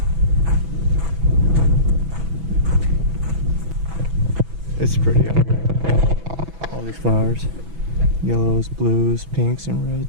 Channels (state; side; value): late; left; 6.1 ms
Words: It's pretty out here. All these flowers. Yellows, blues, pinks, and